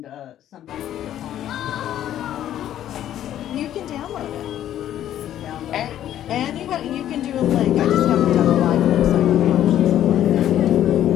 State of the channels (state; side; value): quieter; right; 11.6 dB